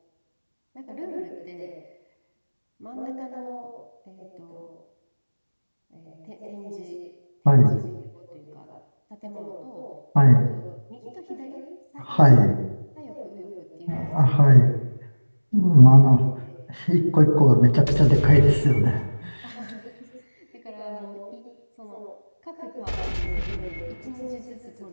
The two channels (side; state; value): both; inverted; correlation -1.00